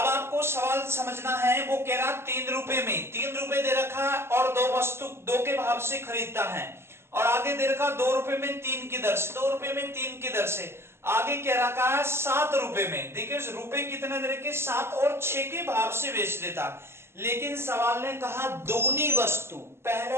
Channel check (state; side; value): late; left; 0.12 ms